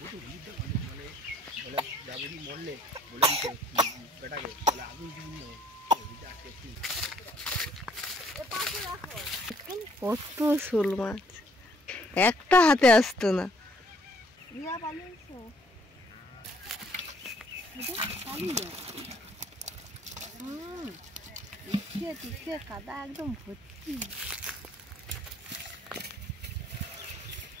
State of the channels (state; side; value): normal; both; correlation 0.62